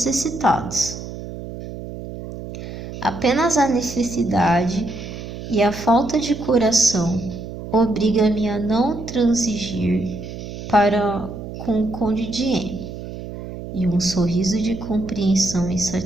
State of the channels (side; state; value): right; noise; hum, 10 dB below the sound